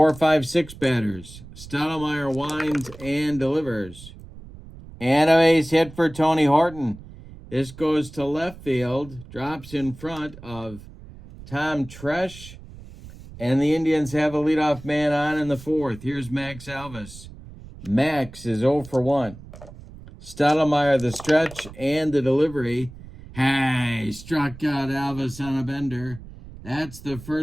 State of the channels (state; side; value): noise; right; rumble, 17 dB below the sound